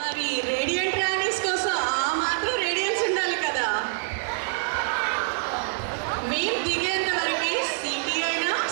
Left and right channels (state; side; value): silent; left; 61 dB below the other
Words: మరి రేడియంట్ రాణీస్ కోసం ఆ మాత్రం రేడియన్స్ ఉండాలి కదా. మేము దిగేంత వరకే సిటీ అయినా